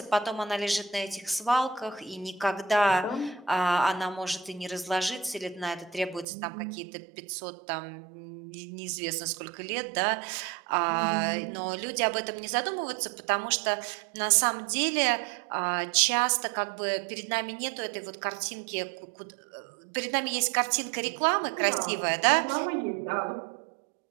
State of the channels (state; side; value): drops out; left; at 6.2 s